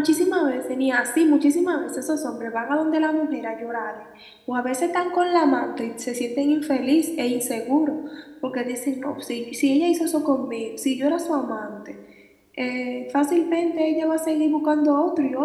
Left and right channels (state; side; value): identical; both; correlation 1.00